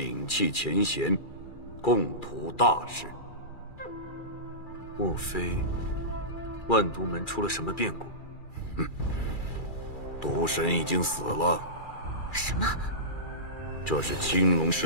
弃前嫌，共图大事。莫非万毒门出了什么变故？毒神已经死了。什么？这是青龙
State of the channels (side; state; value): right; late; 2.3 ms